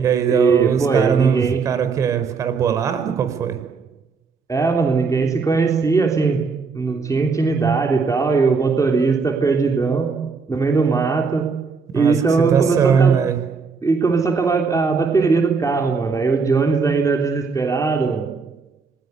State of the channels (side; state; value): left; quieter; 5.0 dB